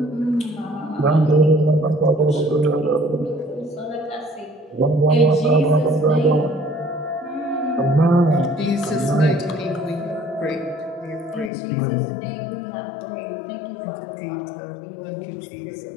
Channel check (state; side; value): drops out; right; at 11.5 s